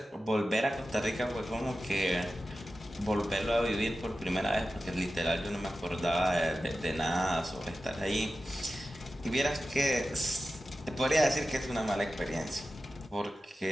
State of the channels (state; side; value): normal; both; correlation 0.93